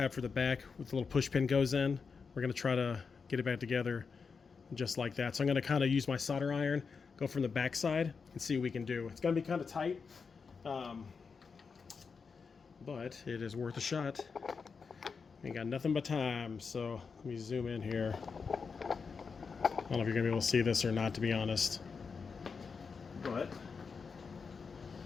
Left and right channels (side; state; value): right; quieter; 5.3 dB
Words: for the back with the little push pin goes in. We're gonna try to get it back together just like that. So I'm gonna kind of use my solder iron, go from the back side, and see what we can do. It's gonna be kind of tight, but it is worth a shot. Ain't got nothing but time, so let me zoom in here. I don't know if you're gonna be able to see this or not, to be honest. But